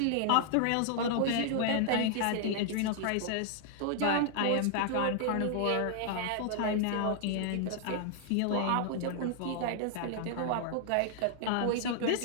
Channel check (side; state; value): both; different; correlation 0.00